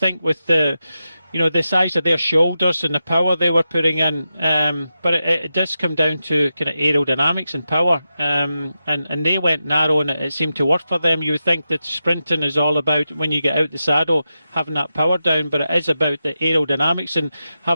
with the size of their shoulders and the power they were putting in, but it does come down to kind of aerodynamics and power, and they went narrow, and it seemed to work for them. You would think that sprinting is all about, when you get out the saddle, having that power down, but it is about the aerodynamics and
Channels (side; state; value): both; inverted; correlation -0.89